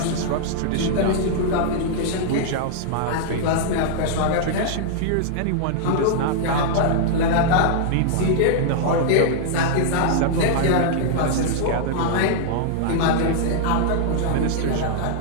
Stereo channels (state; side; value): different; both; correlation -0.01